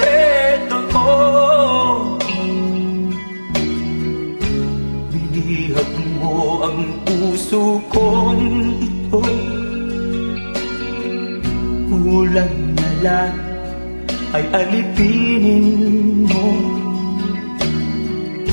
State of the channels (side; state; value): both; inverted; correlation -1.00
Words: ko. Binihag mo ang puso kong ito, kulang na lang ay alipinin mo.